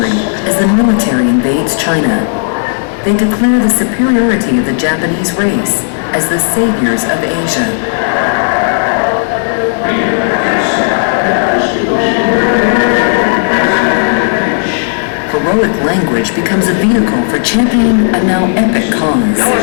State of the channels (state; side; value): silent; right; 62 dB below the other